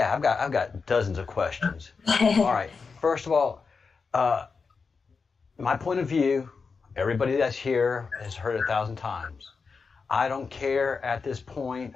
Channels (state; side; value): quieter; right; 5.0 dB